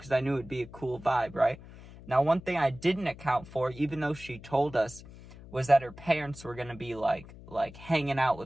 I knew it'd be a cool vibe, right? Now, one thing I didn't account for, even though she told us, was that her parents were going to be like hanging out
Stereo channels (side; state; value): left; noise; hum, 18 dB below the sound